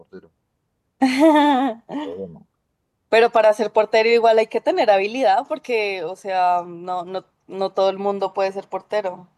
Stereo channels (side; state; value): both; identical; correlation 1.00